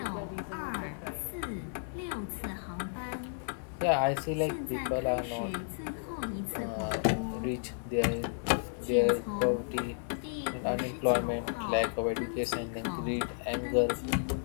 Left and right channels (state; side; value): silent; right; digital silence